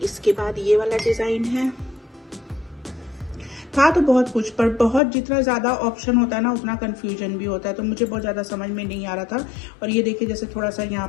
इसके बाद ये वाला डिज़ाइन है। था तो बहुत कुछ, पर बहुत जितना ज़्यादा ऑप्शन होता है ना उतना कन्फ्यूजन भी होता है, तो मुझे बहुत ज़्यादा समझ में नहीं आ रहा था। और ये देखिए जैसे थोड़ा सा यहाँ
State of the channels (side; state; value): right; drops out; at 5.0 s